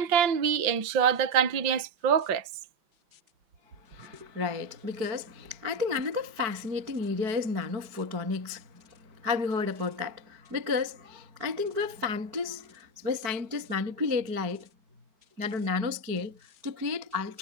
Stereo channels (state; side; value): late; left; 4.6 ms